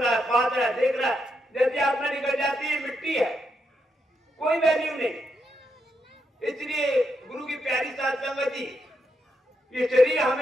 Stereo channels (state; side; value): normal; both; correlation 0.81